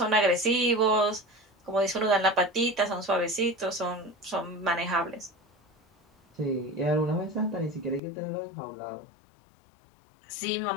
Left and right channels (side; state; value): right; drops out; at 8.0 s